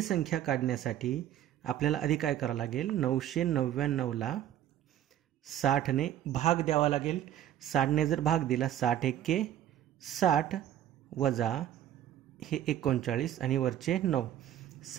संख्या काढण्यासाठी आपल्याला आधी काय करावं लागेल? 999 ला 60 ने भाग द्यावा लागेल. 60 ने जर भाग दिला 60 एक्के 60 वजा हे 39 आणि वरचे 9,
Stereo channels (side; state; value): left; quieter; 11.5 dB